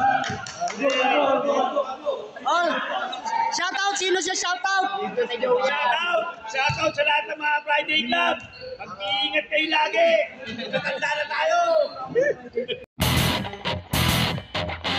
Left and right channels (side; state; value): both; identical; correlation 1.00